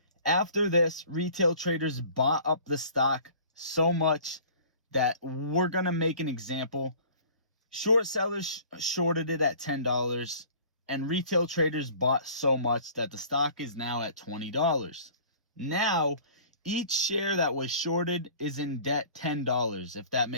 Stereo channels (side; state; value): both; inverted; correlation -0.48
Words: After this, retail traders bought up the stock so much that we're going to make an example. Short sellers shorted it at $10 and retail traders bought so much that the stock is now at $20. Now, each share that was shorted is in debt $10, if that